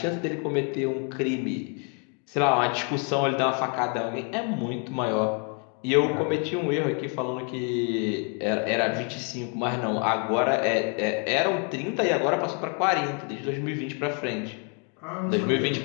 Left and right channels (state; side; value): quieter; right; 37.6 dB